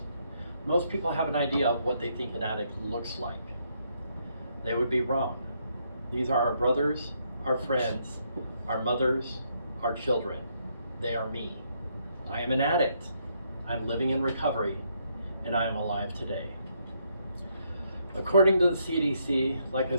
Most people have an idea of what they think an addict looks like. They would be wrong. These are our brothers, our friends, our mothers, our children. They are me. I am an addict. I'm living in recovery, and I am alive today. According to the CDC, like I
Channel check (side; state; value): both; inverted; correlation -0.74